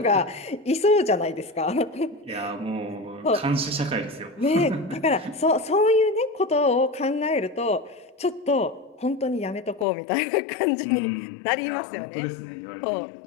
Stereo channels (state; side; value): drops out; right; at 9.9 s